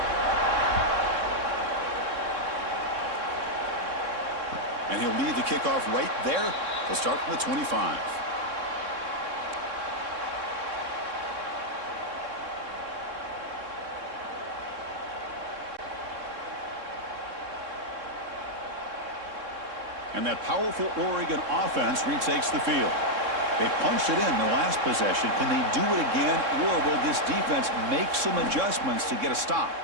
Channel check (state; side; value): late; left; 3.6 ms